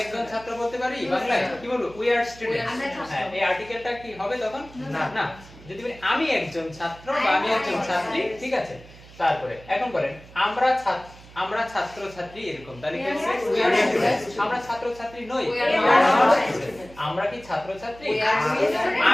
একজন ছাত্র বলতে পারি বাংলায়, কি বলবো? We are student. হ্যাঁ, এই আর্টিকেলটা কি হবে তখন? না। যদি বলি আমি একজন ছাত্র বা আমি একজন ছাত্রী, ঠিক আছে? তারপরে এখন বলেন আমরা ছাত্র ছাত্রী, এরকম তাহলে কি হবে? আমরা ছাত্র ছাত্রী নই, আমরা কি ছাত্র ছাত্রী?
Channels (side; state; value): right; noise; hum, 21 dB below the sound